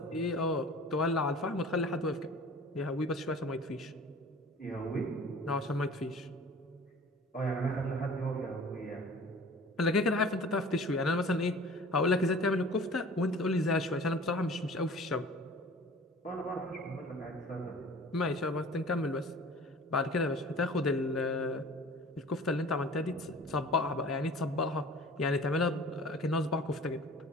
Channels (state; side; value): normal; both; correlation 0.44